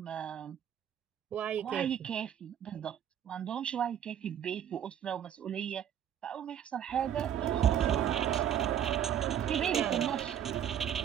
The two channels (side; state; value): left; quieter; 9.6 dB